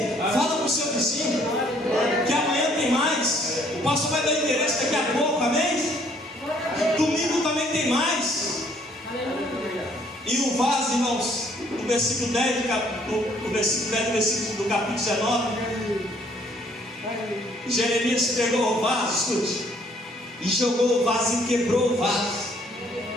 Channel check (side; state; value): both; normal; correlation 0.63